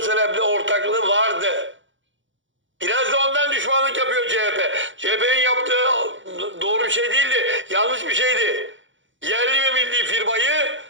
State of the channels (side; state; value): left; late; 0.56 ms